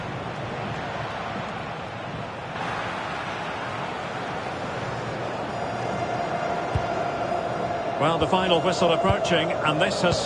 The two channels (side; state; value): both; identical; correlation 1.00